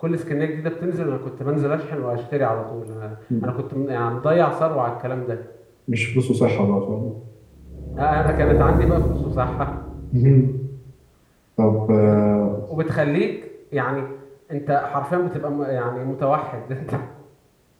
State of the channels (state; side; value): identical; both; correlation 1.00